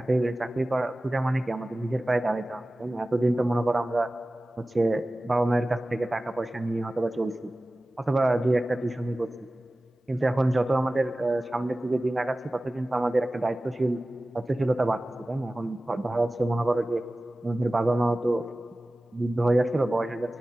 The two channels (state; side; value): normal; both; correlation 0.97